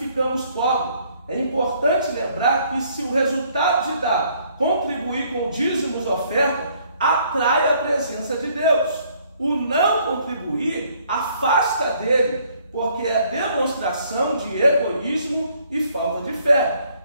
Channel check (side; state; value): both; inverted; correlation -0.64